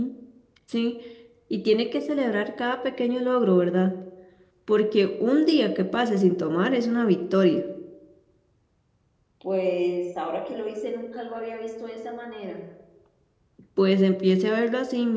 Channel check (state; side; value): identical; both; correlation 1.00